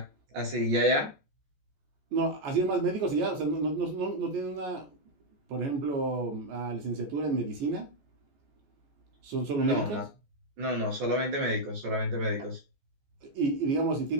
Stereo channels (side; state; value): left; late; 14 ms